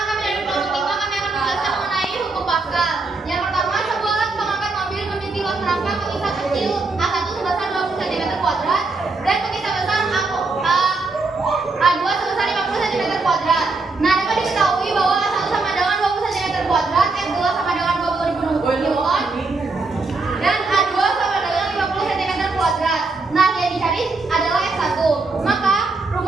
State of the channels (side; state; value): left; quieter; 3.7 dB